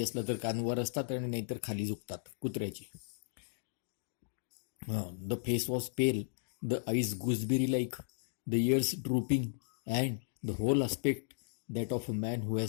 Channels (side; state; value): right; silent; digital silence